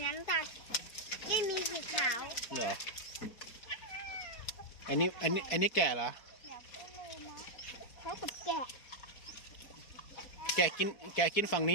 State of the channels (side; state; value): right; late; 4.6 ms